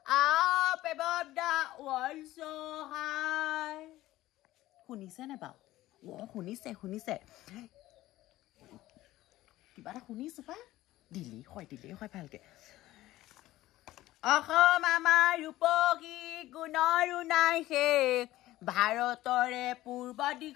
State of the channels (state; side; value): quieter; right; 16.0 dB